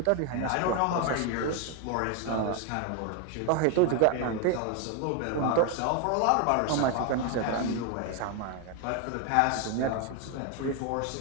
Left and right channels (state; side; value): different; both; correlation 0.01